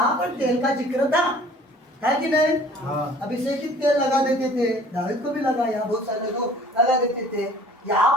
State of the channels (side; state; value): both; normal; correlation 0.51